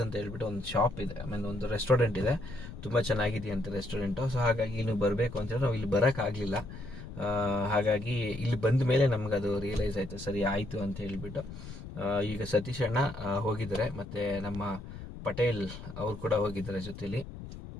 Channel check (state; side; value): noise; left; rumble, 12 dB below the sound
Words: ಅಂತ ಹೇಳ್ಬಿಟ್ಟು ಒಂದು ಶಾಪ್ ಇದೆ, ಆಮೇಲೆ ಒಂದು ರೆಸ್ಟೋರೆಂಟ್ ಇದೆ. ತುಂಬ ಚೆನ್ನಾಗಿದೆಯಂತೆ ರೆಸ್ಟೋರೆಂಟು. ಸೊ ಹಾಗಾಗಿ ಇಲ್ಲಿ ಬರಬೇಕು ಅಂತೇಳಿ ನಾವು ಇಲ್ಲಿ ಬರೋಕ್ಕಾಗಲಿಲ್ಲ. ಹಾಗಾಗಿ ಇಲ್ಲಿ ಬಂದ ಮೇಲೆ ನಮ್ಗೆ ಅದು ರಿಯಲೈಸ್ ಆಯಿತು, ಸರಿ ಆಯಿತು ಅಂತ ಹೇಳಿಬಿಟ್ಟು. ಈಗ ಸತೀಶ್ ಅಣ್ಣ ಹೋಗಿದ್ದಾರೆ, ಮತ್ತು ನಮ್ಮ ಪಟೇಲ್ ಅವ್ರು ಕೂಡ ಹೋಗಿದ್ದಾರೆ ಜೊತೆಲಿ.